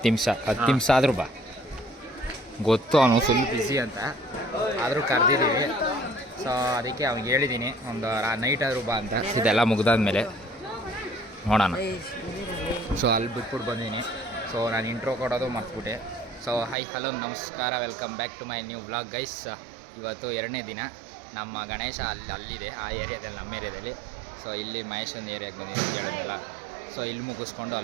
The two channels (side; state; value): left; drops out; at 16.8 s